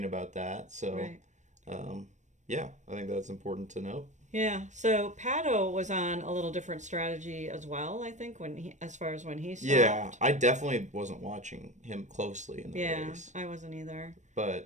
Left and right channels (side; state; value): left; late; 0.35 ms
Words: about that. So, Right. yeah, I think that's important to note. Yeah, so Pato was on a little different strategy as well, I think, as far as when he stopped. Yeah, I definitely wasn't watching him closely in the race. I wasn't either.